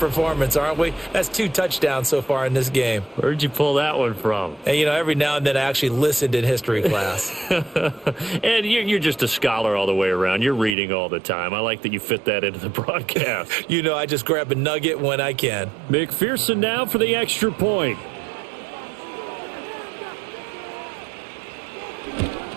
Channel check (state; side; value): drops out; left; at 10.8 s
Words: aren't we? That's 2 touchdowns so far in this game. Where'd you pull that one from? And, you know, every now and then I actually listened in history class. And you're just a scholar all the way around. You're reading all the time. I like that you fit that into the broadcast. You know, I just grab a nugget when I can. McPherson now for the extra point.